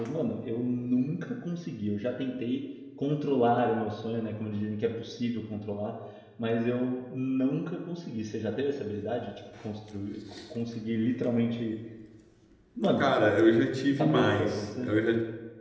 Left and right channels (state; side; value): identical; both; correlation 1.00